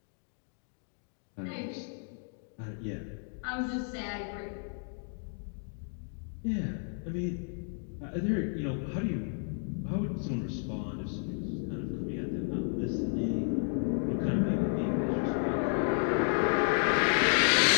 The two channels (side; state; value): right; silent; 56 dB below the other